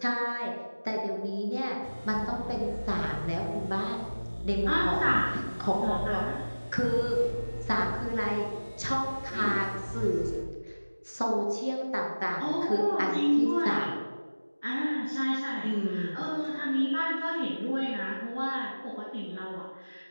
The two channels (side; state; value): both; inverted; correlation -1.00